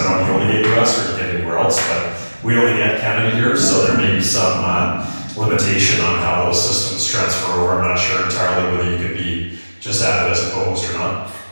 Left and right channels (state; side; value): inverted; both; correlation -1.00